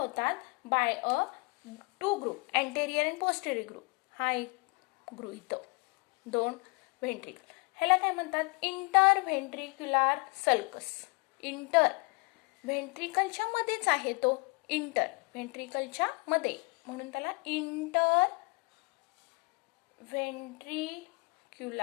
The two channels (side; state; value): right; quieter; 30.3 dB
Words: by a 2 group, anterior and posterior group. हा एक ग्रुप इथं 2 ventricle. ह्याला काय म्हणतात इंटरव्हेंट्रिक्युलर सल्कस. इंटर व्हेंट्रिकलच्या मध्येच आहे तो, इंटर व्हेंट्रिकलच्या मध्ये म्हणून त्याला इंटर